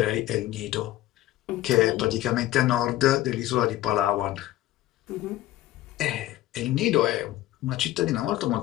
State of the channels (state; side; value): quieter; right; 15.2 dB